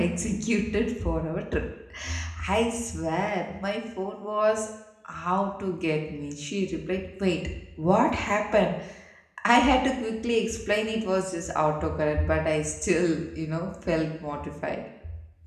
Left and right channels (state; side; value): identical; both; correlation 1.00